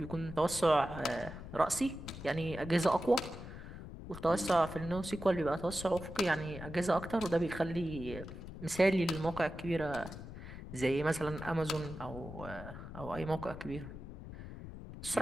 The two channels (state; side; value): noise; left; rumble, 11 dB below the sound